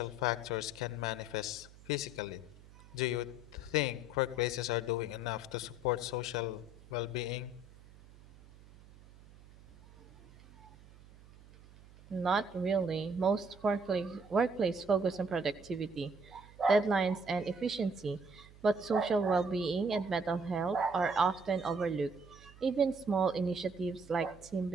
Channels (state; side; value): noise; right; hum, 22 dB below the sound